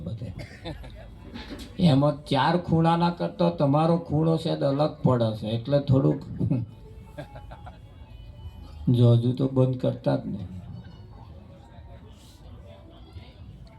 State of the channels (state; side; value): identical; both; correlation 1.00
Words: બધે. એમાં 4 ખૂણાના કરતો તમારો ખૂણો છે અલગ પડે છે. એટલે થોડુંક જો હજુ તો બંધ કરતા જ નહીં.